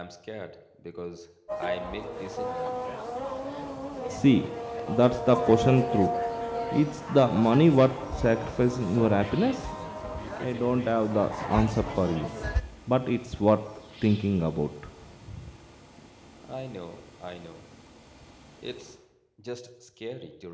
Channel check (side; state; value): both; identical; correlation 1.00